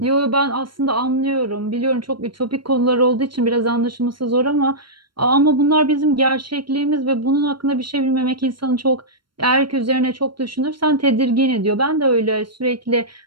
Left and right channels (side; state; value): left; late; 0.73 ms